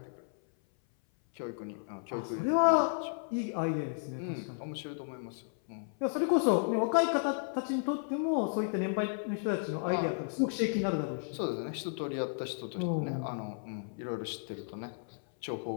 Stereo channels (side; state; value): right; silent; 55 dB below the other